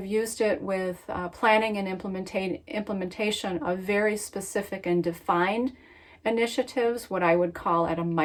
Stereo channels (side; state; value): both; identical; correlation 1.00